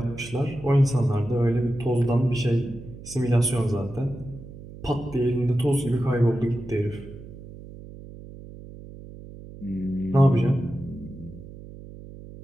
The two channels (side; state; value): right; noise; hum, 15 dB below the sound